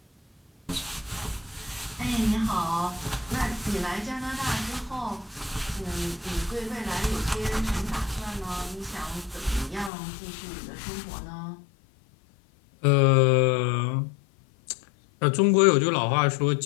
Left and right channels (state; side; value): drops out; right; at 9.9 s